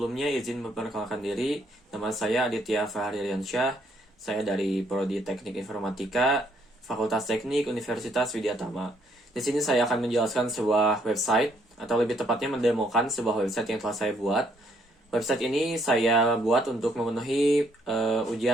izin memperkenalkan diri. Nama saya Aditya Fahririansyah. Saya dari Prodi Teknik Informatika, Fakultas Teknik Universitas Widyatama. Di sini saya akan menjelaskan sebuah website, atau lebih tepatnya mendemokan sebuah website yang telah saya buat. Website ini saya buat untuk memenuhi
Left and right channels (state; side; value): normal; both; correlation 0.69